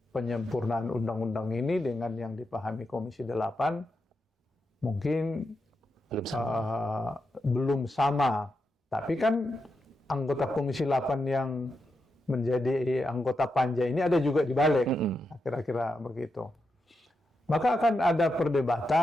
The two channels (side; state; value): both; normal; correlation 0.86